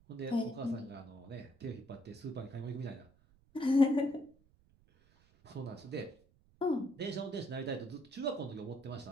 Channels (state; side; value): noise; right; rumble, 30 dB below the sound